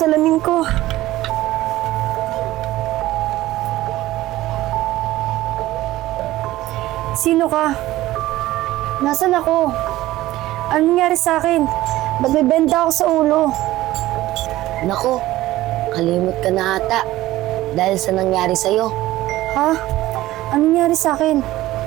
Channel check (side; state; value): left; quieter; 16.3 dB